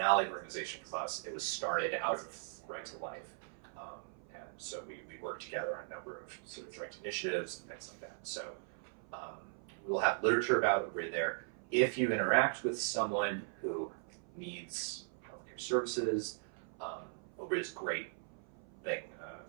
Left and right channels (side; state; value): left; silent; 52 dB below the other